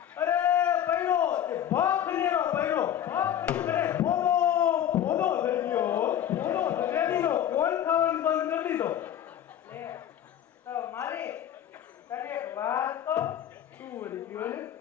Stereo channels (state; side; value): quieter; right; 10.5 dB